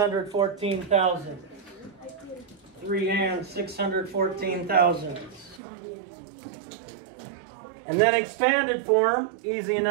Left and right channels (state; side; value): drops out; left; at 5.6 s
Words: 3 and 614,000. And then expanded form, easy